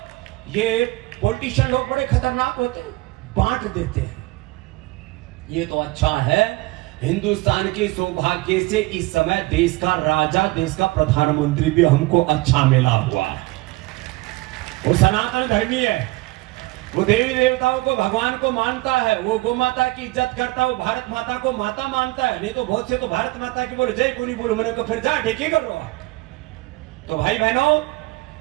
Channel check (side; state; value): left; quieter; 21.0 dB